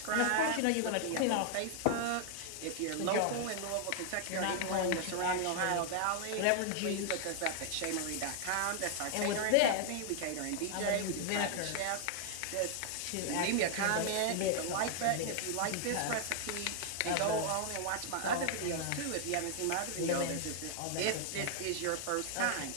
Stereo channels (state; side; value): different; both; correlation 0.00